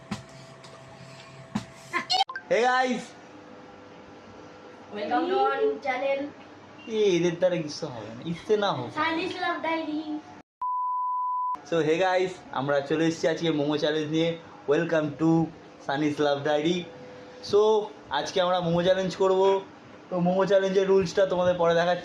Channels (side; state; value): both; identical; correlation 1.00